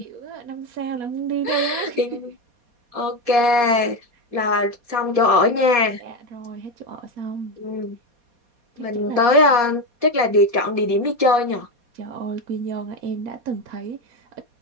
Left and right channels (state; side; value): late; left; 4.2 ms